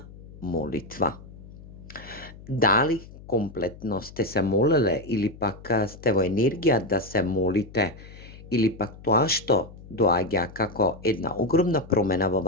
молитва. Дали комплетно сте се молеле или пак сте во енергија да се молите, или пак тоа што доаѓа како една огромна промена во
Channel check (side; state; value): left; noise; hum, 18 dB below the sound